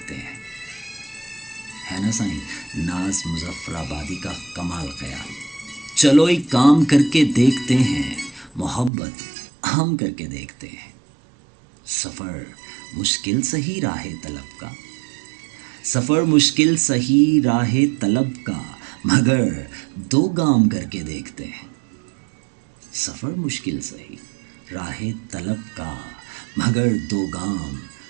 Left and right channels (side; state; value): left; drops out; at 8.9 s